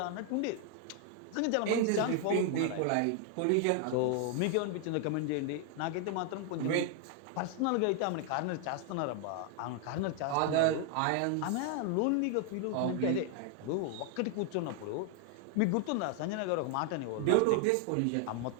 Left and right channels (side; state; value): both; different; correlation 0.00